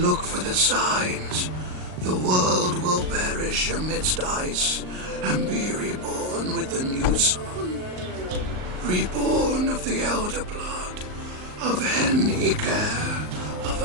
for the signs. The world will perish amidst ice, and be reborn with the new sun. Reborn of the elder blood, of Hen-Iker, of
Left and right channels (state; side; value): late; left; 38 ms